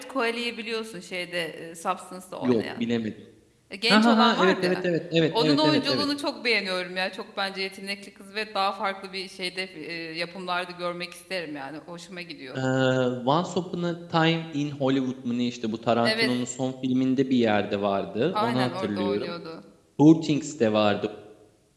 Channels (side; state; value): both; identical; correlation 1.00